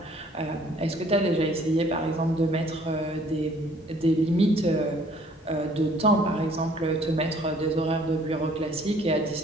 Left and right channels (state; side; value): normal; both; correlation 0.58